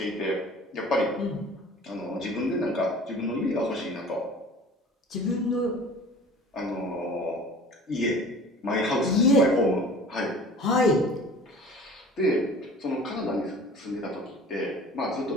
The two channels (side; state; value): both; normal; correlation 0.44